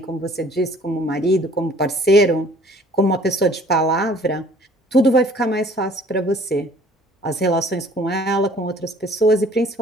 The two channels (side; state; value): both; normal; correlation 0.54